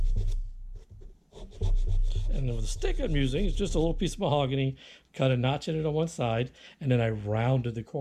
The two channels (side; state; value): both; identical; correlation 1.00